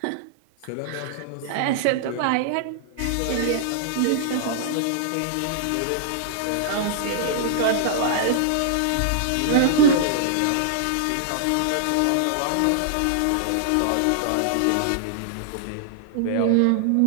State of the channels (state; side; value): different; both; correlation -0.01